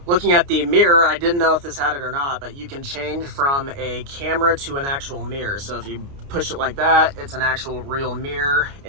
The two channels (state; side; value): late; left; 29 ms